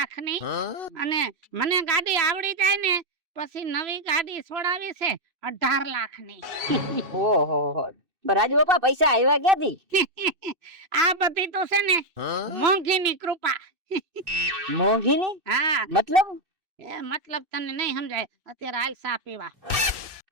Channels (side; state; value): left; late; 2.6 ms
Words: અને મને ગાડી આવડી જાય ને પછી નવી ગાડી છોડાવી છે 18 લાખની ઓહો રાજુ બાપા પૈસા આવ્યા ક્યાંથી? આ બધી તો છે ને મોંઘીની કૃપા મોંઘીની હા મતલબ? એ મતલબ તને નહીં સમજાય અત્યારે હાલ ચા પીવા